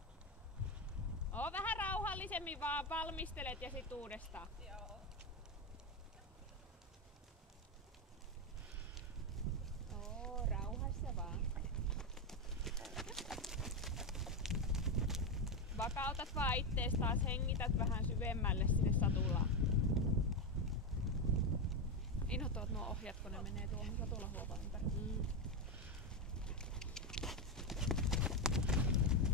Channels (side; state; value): both; normal; correlation 0.10